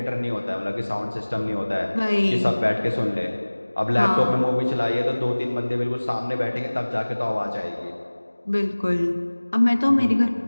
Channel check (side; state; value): both; inverted; correlation -1.00